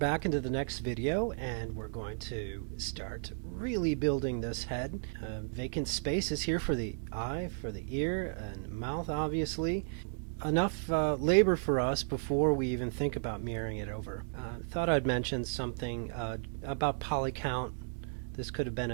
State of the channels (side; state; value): left; silent; digital silence